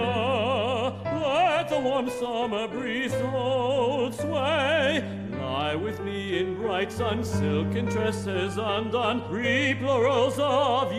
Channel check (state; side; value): identical; both; correlation 1.00